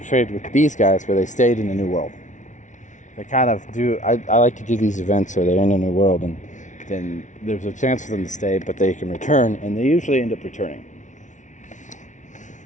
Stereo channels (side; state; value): right; late; 0.36 ms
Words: traded with these guys, where they stayed in a new world. They kind of do, I like to do these events where they're in a new world, and then there's a chance for them to stay, but they can return, and they usually end up returning.